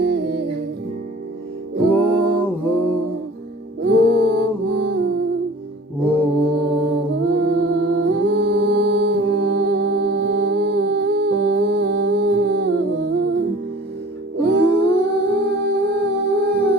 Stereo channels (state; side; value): normal; both; correlation 0.45